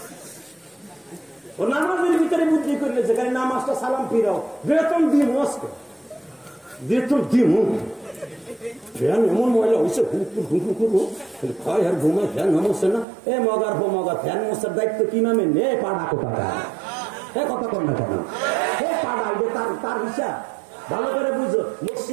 ও নামাজের ভিতরে বুদ্ধি করলে যেখানে নামাজটা সালাম ফিরাও, বেতন দিই মস্ক, বেতন দিই ফ্যান এমন ময়লা হয়েছে, খায় আর ঘুমায়, ফ্যান নামছে না। এ মগার হো মগা, ফ্যান মশার দায়িত্ব কি নামে নে পাড়া কোথা, এ কথা কর না কেন? এ পাড়া তার হিসাব ভালো করে বুঝো,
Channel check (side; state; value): left; drops out; at 13.1 s